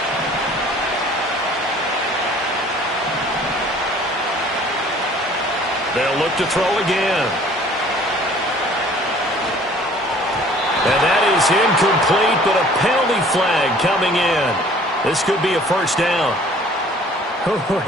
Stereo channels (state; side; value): normal; both; correlation 0.53